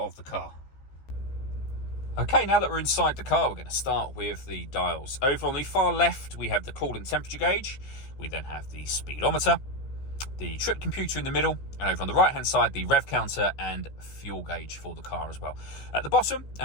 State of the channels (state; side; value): late; right; 15 ms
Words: the car. Okay, now that we're inside the car, we're going to start with the dials. Over on the far left, we have the coolant temperature gauge. We then have the speedometer, the trip computer in the middle, and over on the right-hand side, the rev counter and fuel gauge for the car as well. At the bottom,